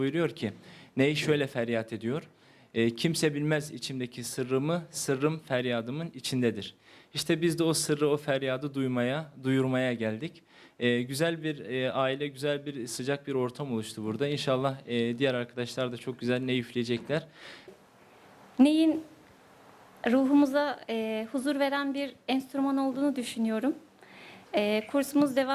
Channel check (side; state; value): both; identical; correlation 1.00